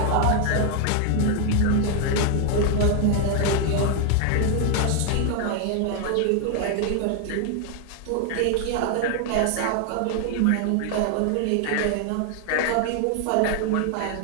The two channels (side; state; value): both; different; correlation 0.00